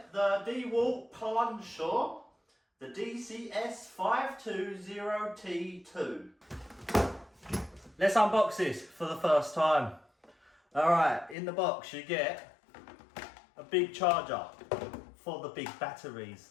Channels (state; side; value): drops out; right; at 11.4 s